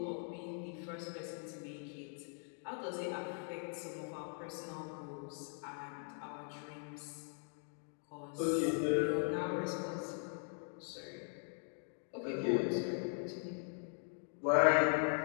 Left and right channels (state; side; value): silent; right; 51 dB below the other